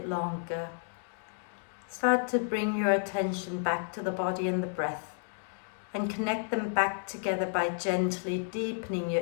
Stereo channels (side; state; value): right; silent; 57 dB below the other